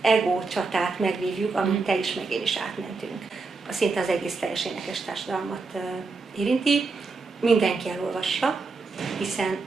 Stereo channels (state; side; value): quieter; left; 4.1 dB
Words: ego csatát megvívjuk, amit te is, meg én is átmentünk. Szinte az egész teljes énekes társadalmat érinti. Mindenki elolvassa, hiszen